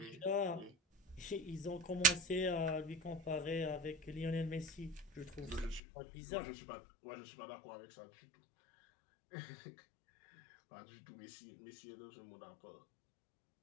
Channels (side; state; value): right; drops out; at 5.8 s